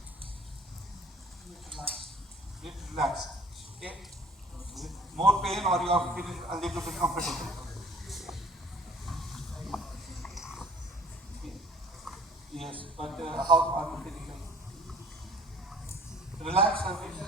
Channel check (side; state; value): both; normal; correlation 0.52